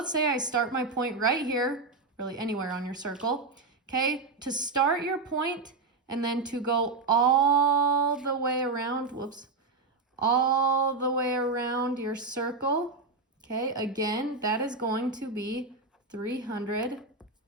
say I start my point right here, really anywhere on your circle. Okay, to start your point and then to go all the way around, all the way around your circle. Okay, again, that is going to be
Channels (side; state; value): left; quieter; 3.9 dB